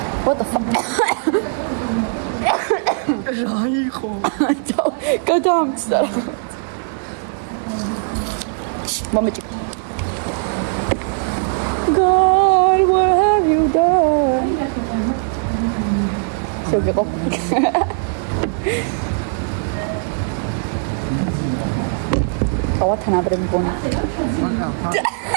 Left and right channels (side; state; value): left; silent; digital silence